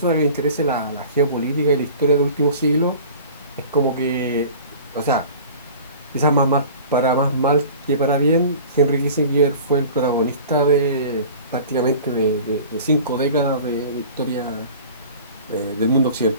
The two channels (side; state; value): both; inverted; correlation -0.42